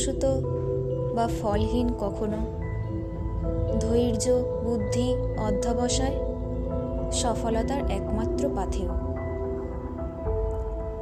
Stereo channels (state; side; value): identical; both; correlation 1.00